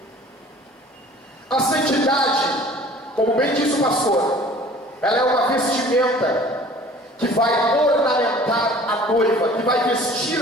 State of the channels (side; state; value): both; normal; correlation 0.48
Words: A santidade, como bem disse o pastor, ela é uma vestimenta que vai ornamentar a noiva, que vai